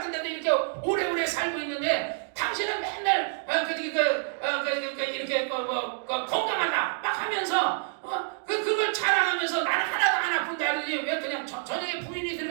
이렇게 오래오래 살고 있는데 당신은 맨날 이렇게 건강하다 막 하면서 그걸 자랑하면서 나는 하나도 안 아픈다더니 왜 그냥 저녁에 부인이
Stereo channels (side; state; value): left; silent; digital silence